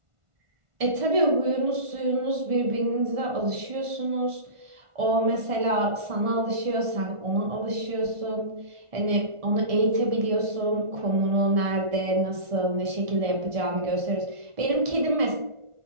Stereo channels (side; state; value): left; late; 1.4 ms